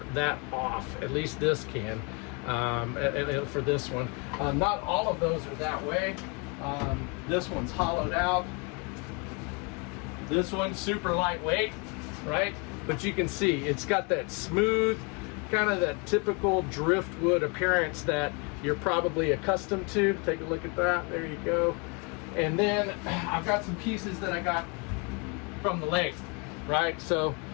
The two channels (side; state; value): right; quieter; 32.3 dB